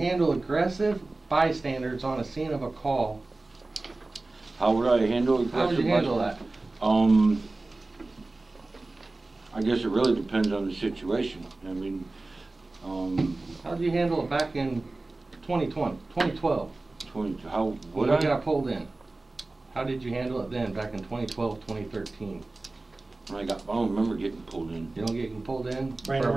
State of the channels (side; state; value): left; quieter; 3.1 dB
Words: aggressive bystanders on a scene of a call? how would I handle it? How would you handle that? I guess it really depends on the situation. I mean, How did you handle it back in 2012? how When would we I? got pulled in. How did you handle it then, back in 2012, 2013? I don't remember getting pulled in. You don't get pulled in? Brandon, for a